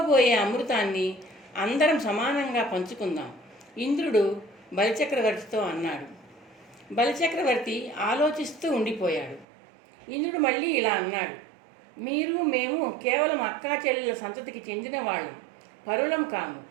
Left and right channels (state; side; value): drops out; left; at 9.5 s